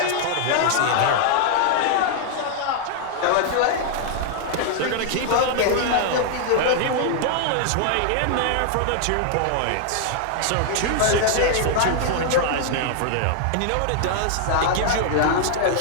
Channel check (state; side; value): different; both; correlation 0.00